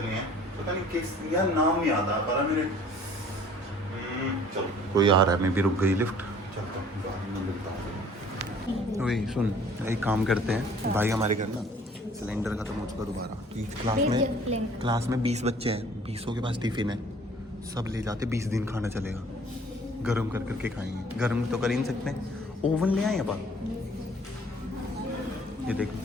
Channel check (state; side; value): normal; both; correlation 0.53